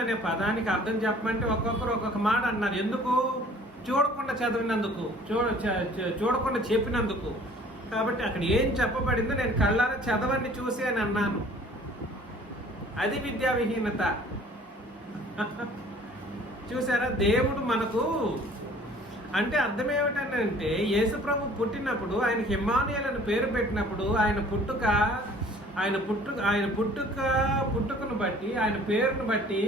అనే పదానికి అర్థం చెప్పమంటే ఒక్కొక్కరు ఒక్కొక్క మాట అన్నారు. ఎందుకు? చూడకుండా చదివినందుకు, చూడకుండా చెప్పినందుకు. కాబట్టి అక్కడ ఏం చెప్పబడిందో నేను కళ్ళారా చదవండి చూసి అని అన్నాను. అది విద్యా విహీనత. చూసారా? దేవుడు మనకు అంటే అర్థం ఏమిటంటే, యేసు ప్రభు పుట్టినప్పుడు ఆయనకి ఇమ్మానుయేలు పేరు పెట్టినప్పుడు ఆయన పుట్టుకను బట్టి, ఆయన పేరును బట్టి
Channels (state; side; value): normal; both; correlation 0.52